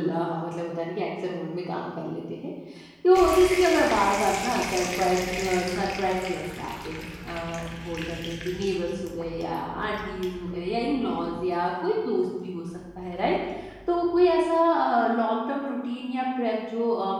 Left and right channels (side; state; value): both; identical; correlation 1.00